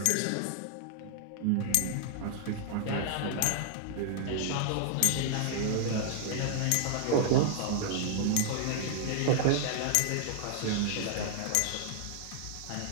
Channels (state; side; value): different; both; correlation -0.01